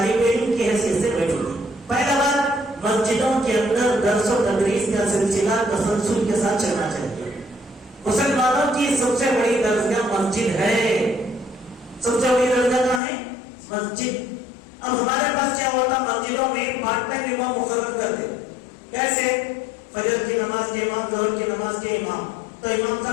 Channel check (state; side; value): drops out; right; at 13.0 s